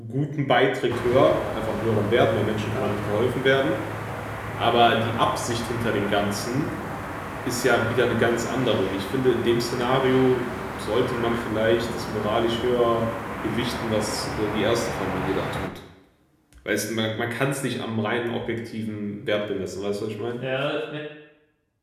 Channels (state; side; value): identical; both; correlation 1.00